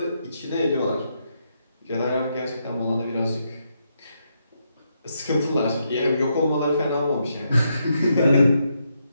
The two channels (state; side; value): inverted; both; correlation -0.80